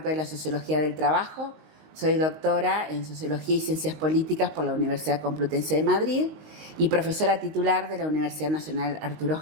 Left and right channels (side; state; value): left; late; 19 ms